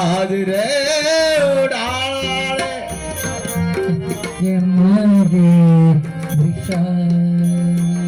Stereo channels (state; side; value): identical; both; correlation 1.00